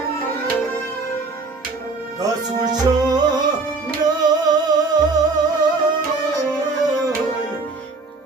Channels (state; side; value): quieter; left; 3.8 dB